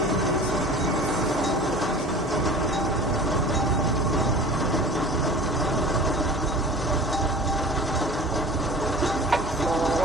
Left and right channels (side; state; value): both; normal; correlation 0.40